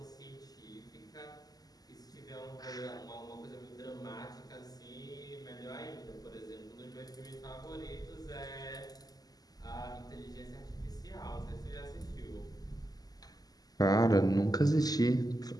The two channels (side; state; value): right; late; 0.18 ms